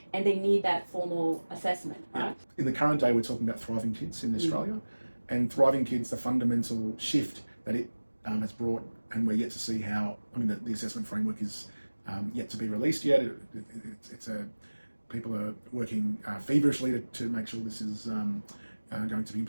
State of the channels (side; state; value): both; inverted; correlation -1.00